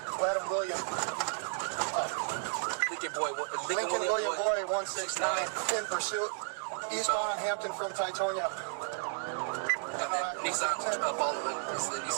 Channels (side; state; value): left; silent; 56 dB below the other